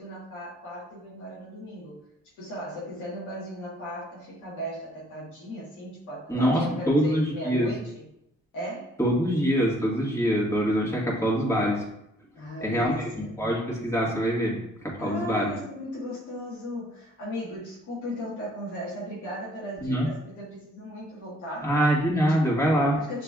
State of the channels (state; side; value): normal; both; correlation 0.64